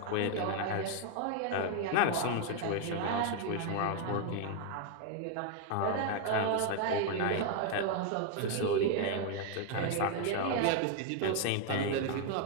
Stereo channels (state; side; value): different; both; correlation 0.00